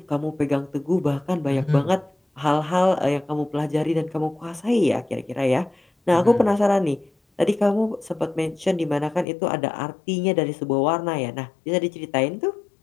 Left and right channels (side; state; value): right; drops out; at 9.2 s